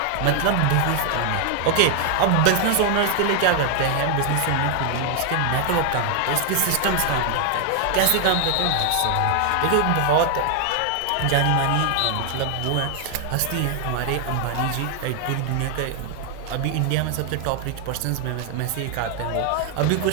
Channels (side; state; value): both; different; correlation 0.00